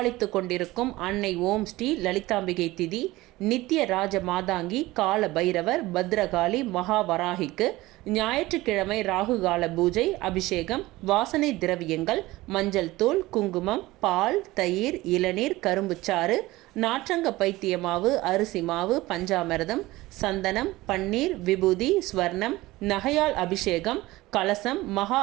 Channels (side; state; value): left; quieter; 18.9 dB